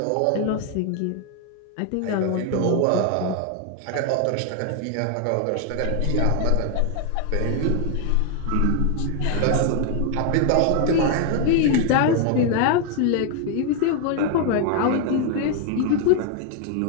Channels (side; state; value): both; different; correlation 0.00